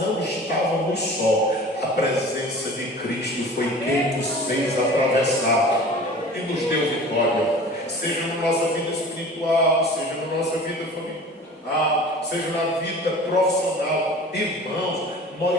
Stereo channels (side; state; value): both; normal; correlation 0.41